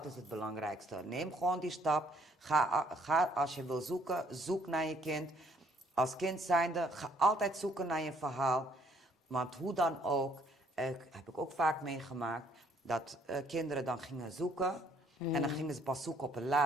is het belangrijkste. Neem gewoon die stap. Ga als je wil zoeken, zoek naar je kind. Als kind zijnde, ga altijd zoeken naar je verhaal. Want hoe dan ook, heb ik ook vaak meegemaakt, dat kinderen dan gingen zoeken. En dan gingen ze pas zoeken op een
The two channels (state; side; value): normal; both; correlation 0.64